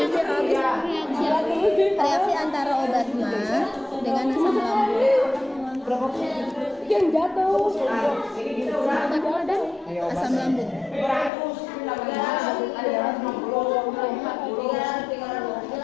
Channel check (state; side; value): drops out; right; at 11.3 s